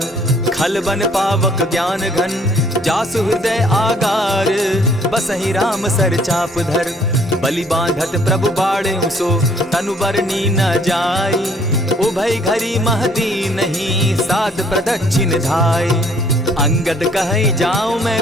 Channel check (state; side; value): normal; both; correlation 0.61